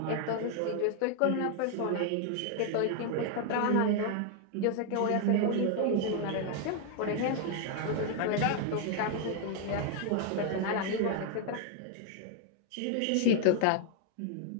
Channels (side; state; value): both; different; correlation 0.00